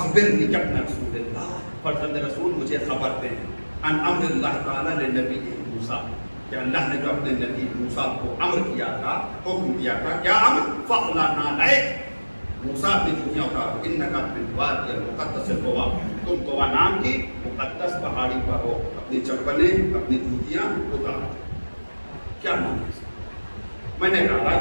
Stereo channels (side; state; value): both; inverted; correlation -1.00